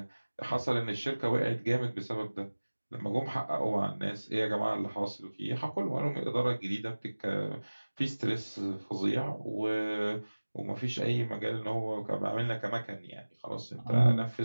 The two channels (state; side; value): inverted; both; correlation -1.00